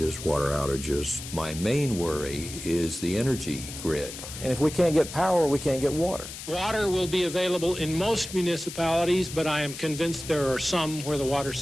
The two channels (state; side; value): noise; left; hiss, 11 dB below the sound